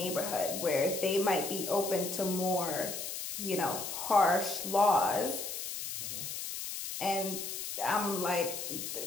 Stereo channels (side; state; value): left; noise; hiss, 5 dB below the sound